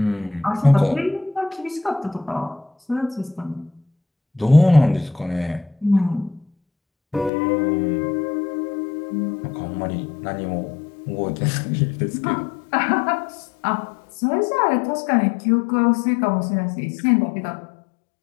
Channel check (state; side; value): drops out; right; at 7.3 s